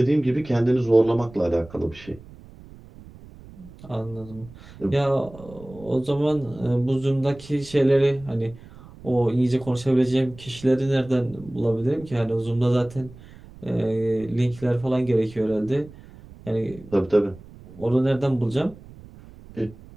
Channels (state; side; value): noise; right; rumble, 20 dB below the sound